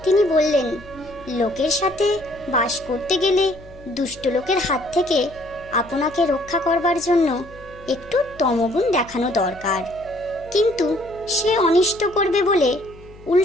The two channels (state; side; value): noise; left; hum, 21 dB below the sound